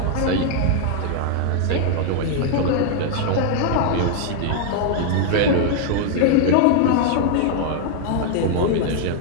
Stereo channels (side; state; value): both; different; correlation 0.00